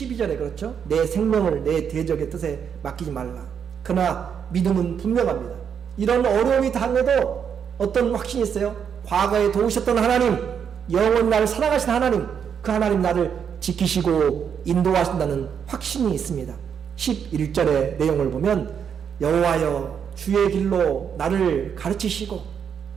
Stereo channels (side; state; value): left; quieter; 7.5 dB